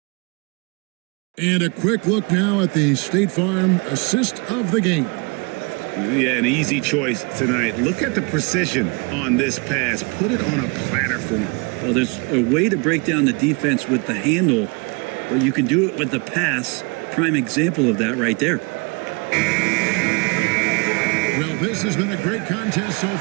And a quick look now at the State Farm assist of the game. Yeah, an easy choice tonight. Look at the precision on this pass. Put it on a platter for him. Well, there's a way to break down the defense with the handle, but you can do it with the pass. Prime example of that right there. Well, this has been a great contest so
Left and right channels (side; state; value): left; quieter; 30.9 dB